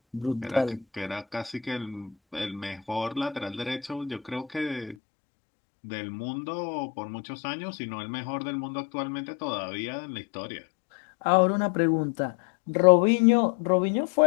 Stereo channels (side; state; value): right; drops out; at 5.0 s